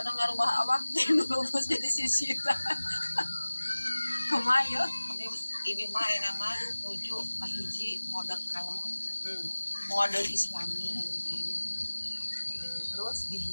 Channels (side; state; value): both; inverted; correlation -1.00